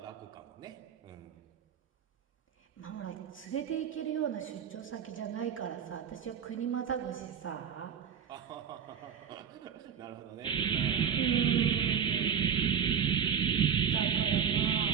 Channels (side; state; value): left; quieter; 7.8 dB